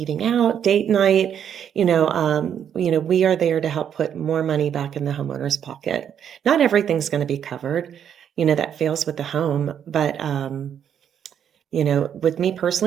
out, date night. We are there to help put more money back in the homeowner's pocket. Not everything's going to be covered, that fails with the home, but with me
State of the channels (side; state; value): left; quieter; 8.8 dB